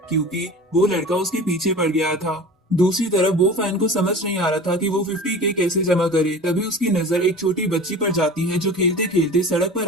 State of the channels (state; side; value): normal; both; correlation 0.38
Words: क्योंकि वो लड़का उसके पीछे पड़ गया था। दूसरी तरफ वो फैन को समझ नहीं आ रहा था कि वो 50 के कैसे जमा करे। तभी उसकी नजर एक छोटी बच्ची पर जाती है जो खेलते खेलते सड़क पर